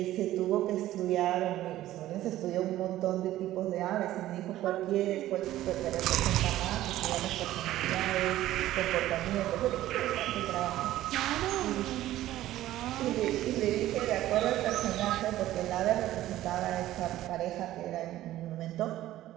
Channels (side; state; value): left; quieter; 14.4 dB